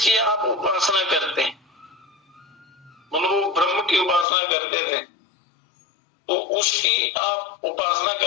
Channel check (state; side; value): drops out; right; at 4.2 s